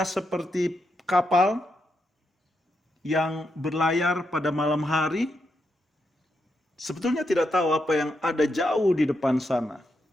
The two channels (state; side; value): normal; both; correlation 0.83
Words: seperti kapal yang berlayar pada malam hari, sebetulnya tidak tahu apa yang ada jauh di depan sana.